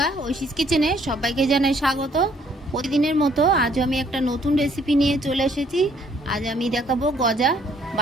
ঐশীস কিচেনে সবাইকে জানাই স্বাগত। প্রতিদিনের মতো আজ আমি একটা নতুন রেসিপি নিয়ে চলে এসেছি। আজ আমি দেখাবো গজা।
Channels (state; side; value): normal; both; correlation 0.63